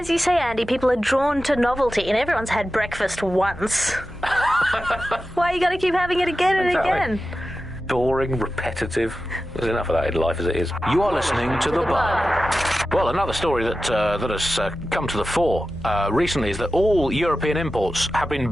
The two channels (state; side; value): normal; both; correlation 0.93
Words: you say, Andy, people are drawn to novelty, and everyone's had breakfast once. Why you got to keep having it again and again? Boring, repetitive. There's enough of that in life as it is. You are listening to The Bug. Well, another story that has come to the fore recently is that all European imports have been